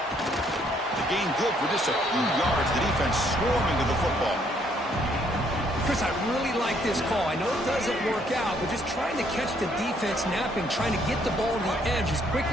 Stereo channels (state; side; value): normal; both; correlation 0.67